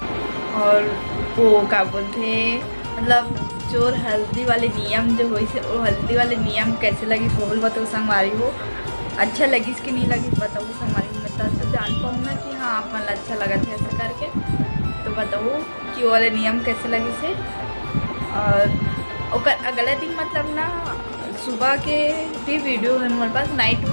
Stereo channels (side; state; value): both; inverted; correlation -1.00